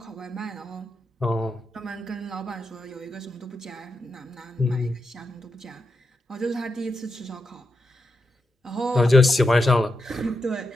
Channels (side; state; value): both; normal; correlation 0.86